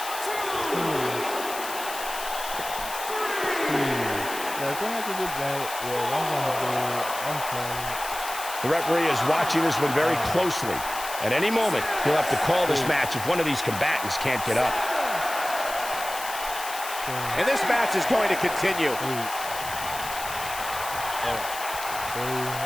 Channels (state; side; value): noise; left; hiss, 9 dB below the sound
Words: The referee is watching this one very closely. At any moment, he'll have to call this match if one of these combatants can't get up. And this match is going to continue.